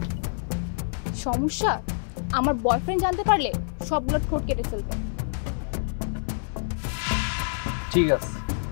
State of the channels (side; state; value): right; silent; digital silence